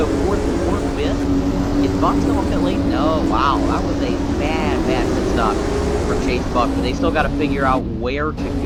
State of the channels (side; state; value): both; identical; correlation 1.00